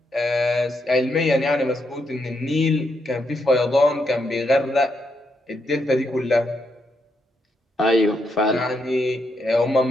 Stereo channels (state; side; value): normal; both; correlation 0.80